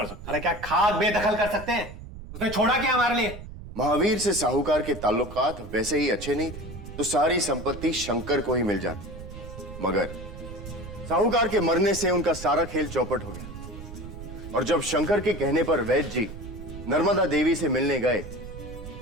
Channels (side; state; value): right; noise; rumble, 12 dB below the sound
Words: सकते। अरे क्या खाक बेदखल कर सकते हैं? उसने छोड़ा क्या हमारे लिए? महावीर से साहूकार के ताल्लुकात वैसे ही अच्छे नहीं थे, तो सारी संपत्ति शंकर को ही मिल जाती। मगर साहूकार के मरने से उनका सारा खेल चौपट हो गया, और जब शंकर के कहने पर वैद्य जी नर्मदा देवी से मिलने गए,